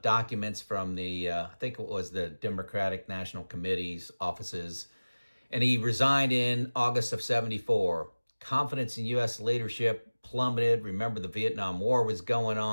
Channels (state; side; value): inverted; both; correlation -1.00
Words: documents from the, I think it was the Democratic National Committee's offices. And he resigned in August of 74. Confidence in U.S. leadership plummeted. Remember, the Vietnam War was going